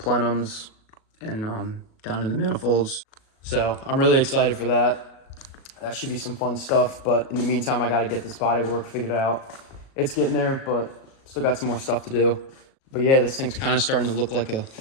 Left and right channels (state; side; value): late; right; 37 ms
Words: and down to the manifolds. So I'm really excited for that. That should be some fun stuff, but in the meantime, I got to get this bodywork figured out. It's getting there, but still got some more stuff to do. But yeah, this thing's kind of starting to look like an